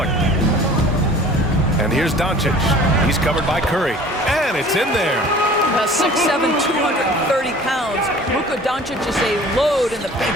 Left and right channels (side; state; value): both; normal; correlation 0.47